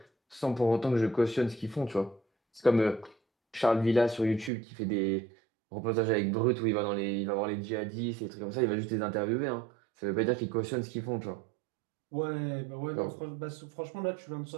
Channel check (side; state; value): left; drops out; at 4.5 s